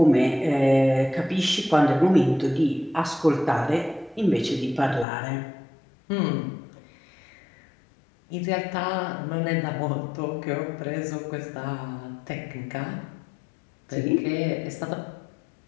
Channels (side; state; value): right; drops out; at 5.1 s